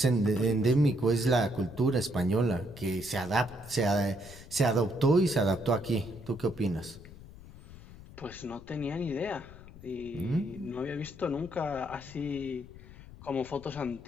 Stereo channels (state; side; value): noise; left; rumble, 17 dB below the sound